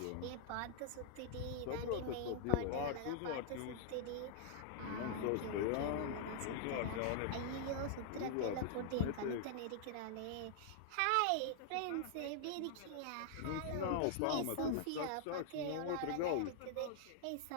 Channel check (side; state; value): both; different; correlation -0.01